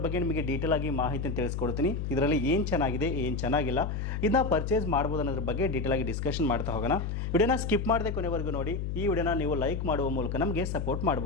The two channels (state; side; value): noise; left; hum, 3 dB below the sound